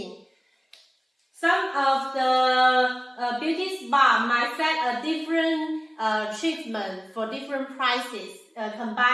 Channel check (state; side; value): identical; both; correlation 1.00